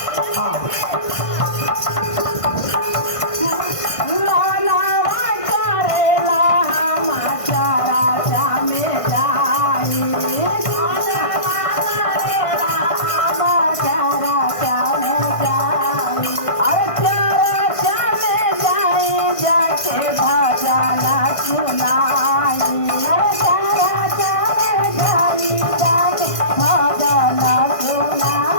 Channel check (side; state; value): right; late; 1.5 ms